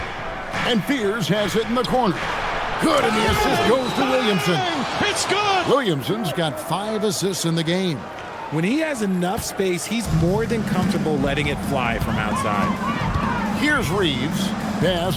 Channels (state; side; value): identical; both; correlation 1.00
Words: And Fears has it in the corner. Good, and the assist goes to Williamson. It's good. Williamson's got 5 assists in the game. When he has enough space, he's more than comfortable letting it fly from outside. Here's Reeves. Pass